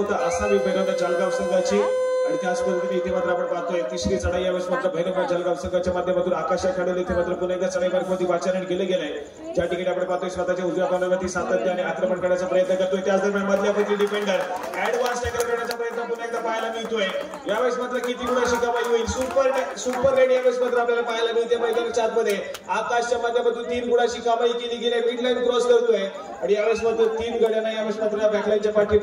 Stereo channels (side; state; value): both; identical; correlation 1.00